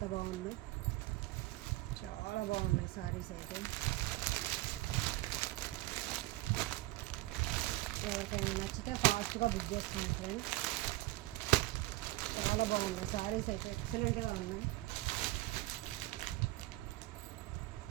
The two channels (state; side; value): quieter; left; 18.8 dB